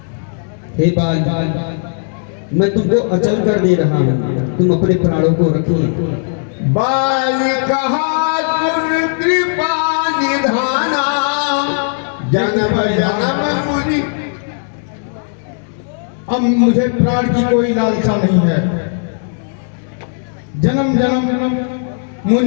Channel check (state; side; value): silent; right; digital silence